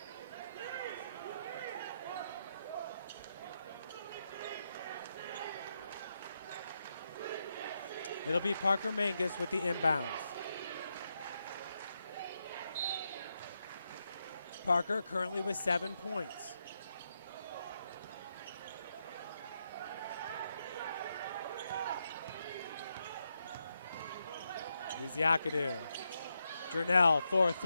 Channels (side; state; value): both; inverted; correlation -0.83